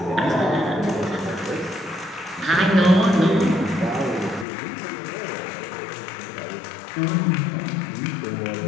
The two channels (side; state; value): right; drops out; at 4.5 s